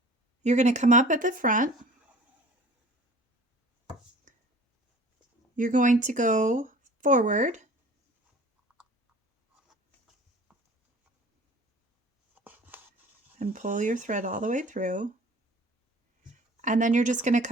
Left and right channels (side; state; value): both; normal; correlation 0.46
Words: You're going to come up at the front. You're going to go forward. and pull your thread all the way through. And then you're just going to